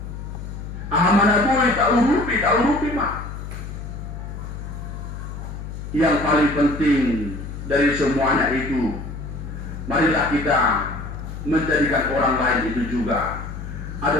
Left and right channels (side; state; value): left; noise; hum, 9 dB below the sound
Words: Ahamana bui taurupi ma. Yang paling penting dari semuanya itu, marilah kita menjadikan orang lain itu juga